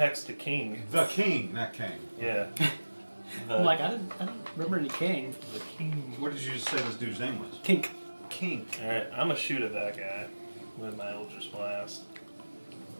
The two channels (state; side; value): inverted; both; correlation -1.00